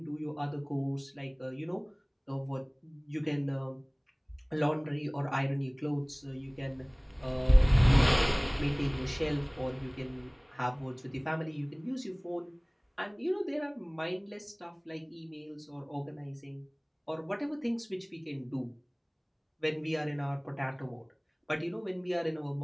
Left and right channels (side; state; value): both; identical; correlation 1.00